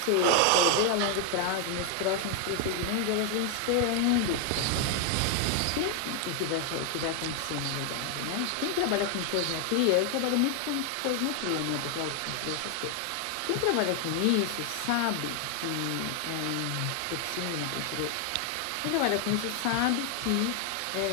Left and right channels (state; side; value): different; both; correlation 0.00